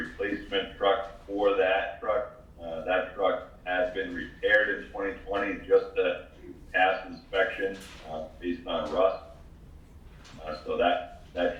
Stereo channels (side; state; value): both; identical; correlation 1.00